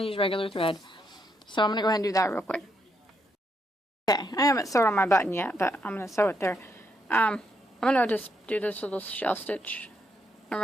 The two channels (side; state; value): both; normal; correlation 0.78